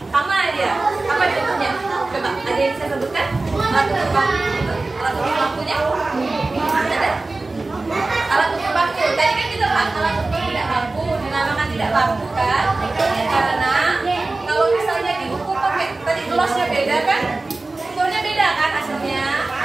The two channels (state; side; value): quieter; left; 3.3 dB